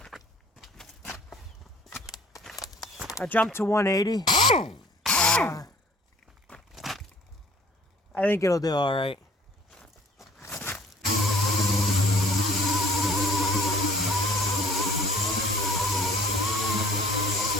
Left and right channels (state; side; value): normal; both; correlation 0.53